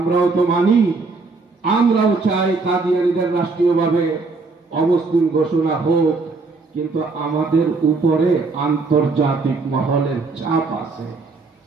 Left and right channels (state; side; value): quieter; left; 3.9 dB